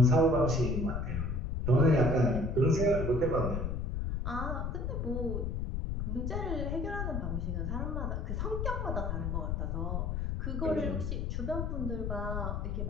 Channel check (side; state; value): left; noise; rumble, 1 dB below the sound